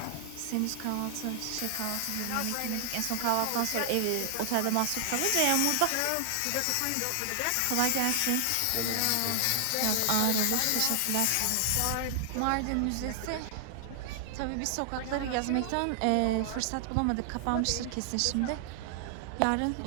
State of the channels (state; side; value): different; both; correlation 0.00